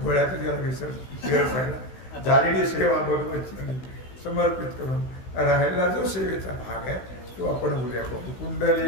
गोळ्यातच गेला विसर सगळा. झालेली सेवा भगवत समर्पित करून राहिला जो सेवेचा भाग आहे तो आपण उद्या बघू.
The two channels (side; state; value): right; late; 16 ms